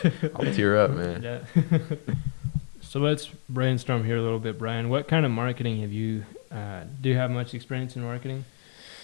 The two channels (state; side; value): silent; right; 60 dB below the other